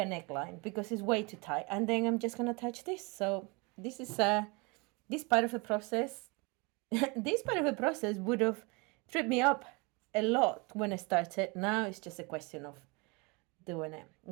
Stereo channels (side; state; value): left; quieter; 28.1 dB